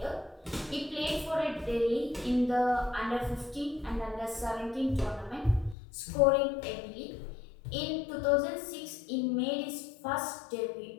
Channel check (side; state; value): right; drops out; at 5.8 s